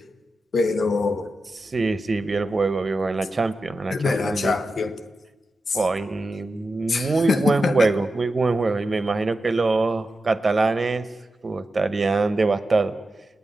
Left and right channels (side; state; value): both; normal; correlation 0.91